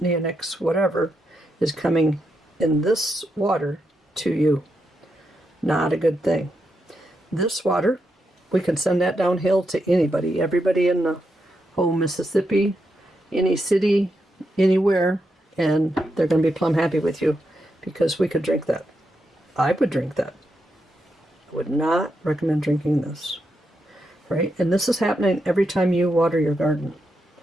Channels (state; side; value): normal; both; correlation 0.84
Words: whatever, is coming in this water to you. Not a good thing. This water, we can send that downhill to anybody, everybody in the whole Mississippi, any city, anywhere, and they're going to be plumb happy with you because we could drink that. I would drink that. I would not recommend drinking this. Right? And this is happening every time you water your garden,